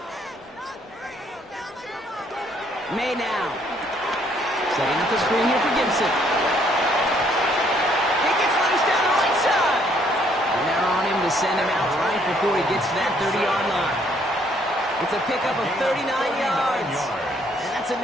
May now. Setting up the screen here for Gibson. He gets loose down the right side. And they're on him to send him out right before he gets to that 30-yard line. It's a pickup of 39 yards. And that's a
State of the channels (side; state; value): both; normal; correlation 0.66